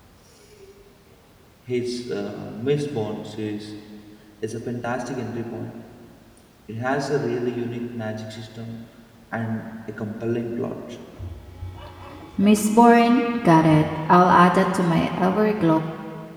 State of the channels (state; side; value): identical; both; correlation 1.00